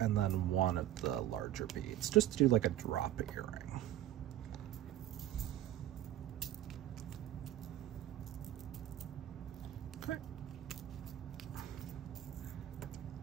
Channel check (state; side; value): quieter; left; 12.9 dB